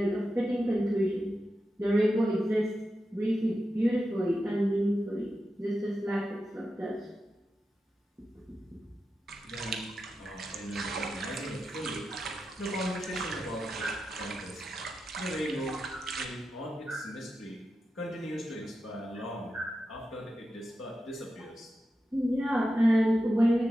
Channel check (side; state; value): both; normal; correlation 0.90